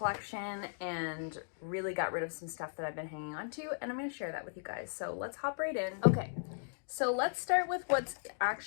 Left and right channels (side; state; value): right; silent; digital silence